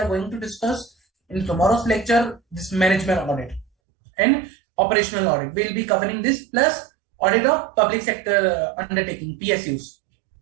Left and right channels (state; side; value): drops out; left; at 3.7 s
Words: going to discuss in tomorrow's lecture, this management audit and operational audit. We'll be covering this plus audit of public sector undertaking, PSUs.